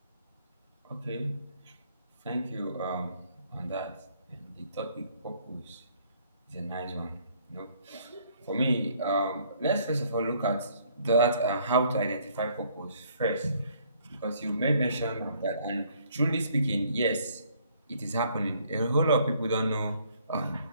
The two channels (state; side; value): inverted; both; correlation -0.64